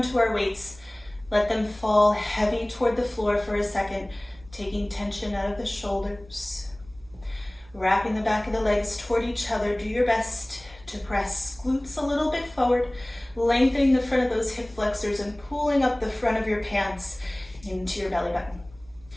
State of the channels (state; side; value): noise; right; hum, 24 dB below the sound